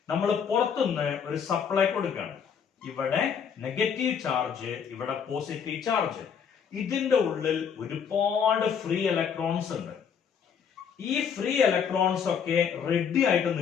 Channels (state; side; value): quieter; right; 7.2 dB